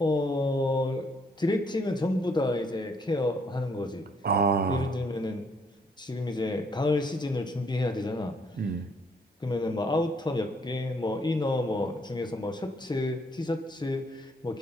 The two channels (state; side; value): normal; both; correlation 0.68